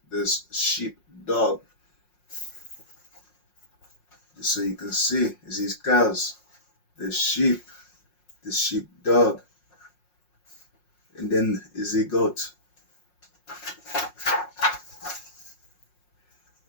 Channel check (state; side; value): late; right; 5.5 ms